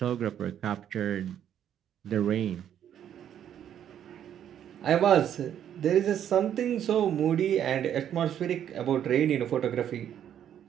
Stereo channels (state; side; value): quieter; left; 9.9 dB